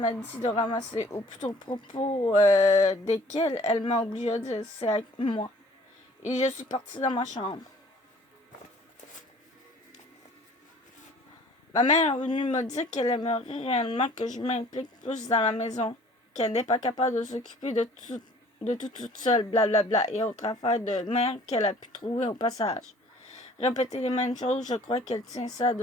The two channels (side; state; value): both; normal; correlation 0.53